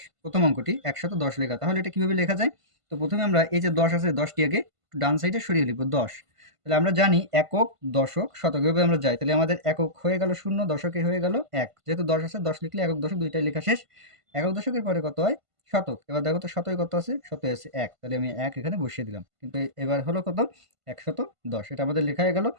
প্রথম অঙ্কটি ১১০ লেখা। তাহলে এটা কিভাবে লেখা যায়? তো প্রথমে আমরা এই যে ১০ আছে ১০টি আগে ডান সাইডে সরিয়ে লিখবো ১০। তাহলে আমরা জানি একক, দশক, শতক, এভাবে আমরা যাই। তাহলে আমাদের একক হয়ে গেল ০, দশকে হয়ে গেল ১। যেহেতু ১০ আছে ১০ লিখলে একক দশক দুইটাই লেখা শেষ। একক দশকের পরে কত হয়? শতক। এবার দেখো তো শতকে কত আছে? শতকে আছে ১। তাহলে আমি ১ এখানে বসিয়ে দিলাম। কিন্তু এবার হলো কত? ১১০। এটা আমাদের লেখা হয়ে গেল।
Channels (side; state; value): left; late; 1.5 ms